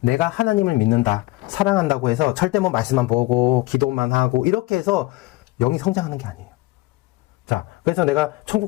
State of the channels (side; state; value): right; quieter; 20.0 dB